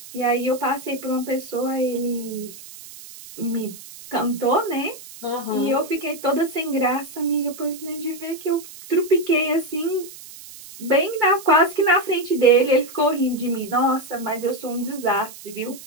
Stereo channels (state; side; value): noise; right; hiss, 16 dB below the sound